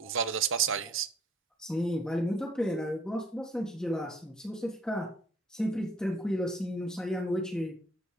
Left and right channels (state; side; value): normal; both; correlation 0.59